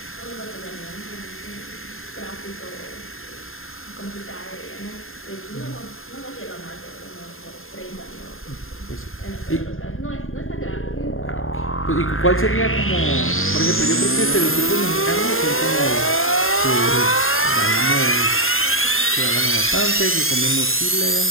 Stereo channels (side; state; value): right; late; 0.60 ms